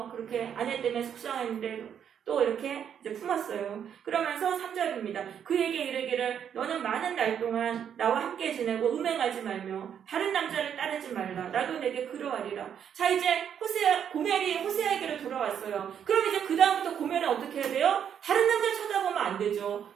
그렇게 아내 때문에 속상했는데 또 이렇게 이제 품었어요. 그러면서 3절입니다. 그에게 이르기를 너는 많은 날 동안 나와 함께 지내고 음행하지 말며 다른 남자를 따르지 말라. 나도 내게 그러하리라. 자, 이제 고멜이 호세아에게로 돌아왔어요. 그럼 이제 그 다음부터 고멜은 어떻게 해야 돼요? 다른 남자 쳐다보면 안 되죠.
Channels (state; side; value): quieter; left; 8.6 dB